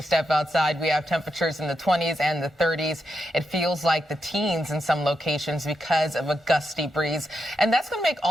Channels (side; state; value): both; normal; correlation 0.85